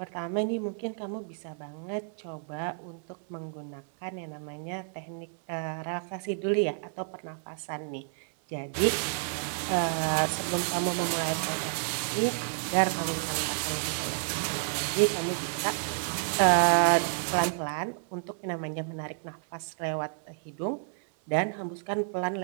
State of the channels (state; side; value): silent; left; 58 dB below the other